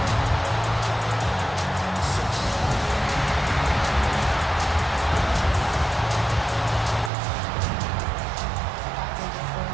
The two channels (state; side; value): drops out; left; at 7.1 s